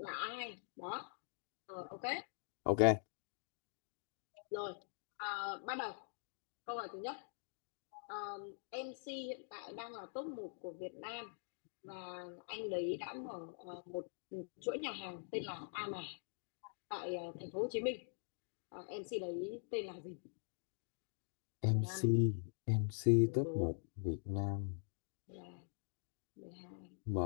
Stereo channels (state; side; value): silent; right; digital silence